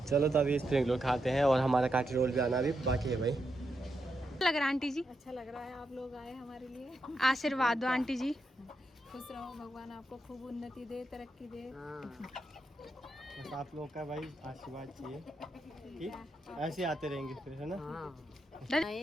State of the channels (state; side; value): normal; both; correlation 0.84